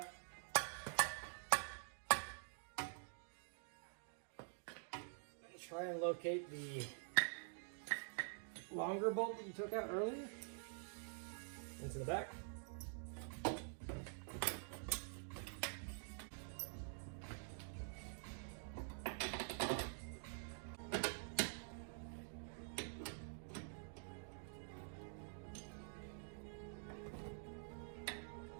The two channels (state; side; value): silent; left; digital silence